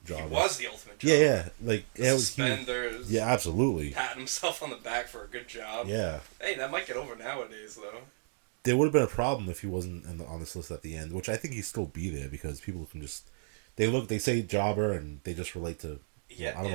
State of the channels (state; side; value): silent; left; digital silence